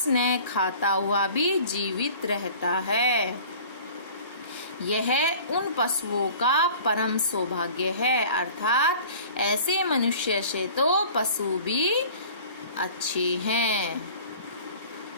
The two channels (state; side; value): inverted; both; correlation -0.45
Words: न खाता हुआ भी जीवित रहता है। यह उन पशुओं का परम सौभाग्य है, अर्थात ऐसे मनुष्य से तो पशु भी अच्छे हैं।